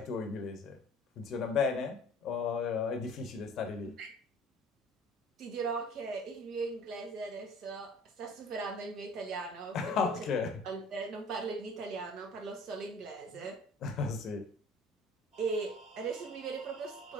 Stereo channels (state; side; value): normal; both; correlation 0.48